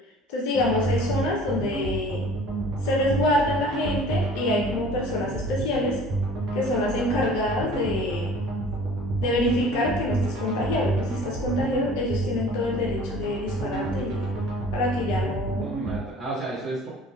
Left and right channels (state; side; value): normal; both; correlation 0.47